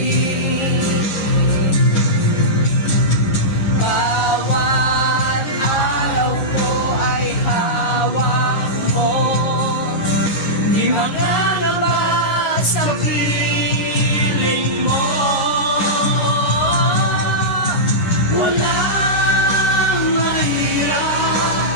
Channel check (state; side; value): late; right; 9.8 ms